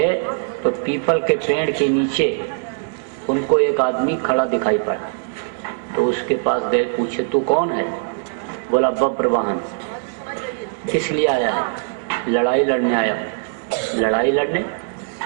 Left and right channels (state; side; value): silent; left; 65 dB below the other